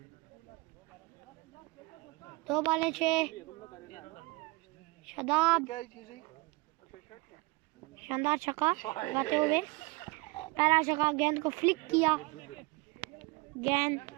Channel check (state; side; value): quieter; left; 24.8 dB